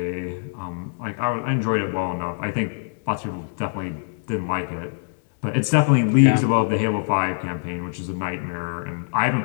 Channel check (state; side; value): silent; right; 63 dB below the other